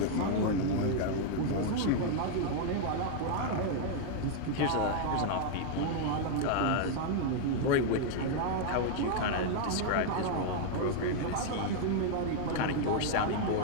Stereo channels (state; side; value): different; both; correlation 0.00